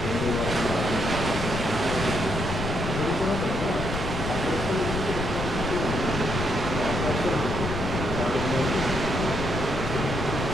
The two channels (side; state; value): left; noise; rumble, 4 dB below the sound